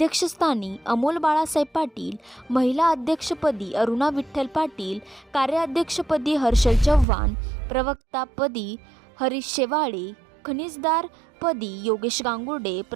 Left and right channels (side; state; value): left; drops out; at 7.1 s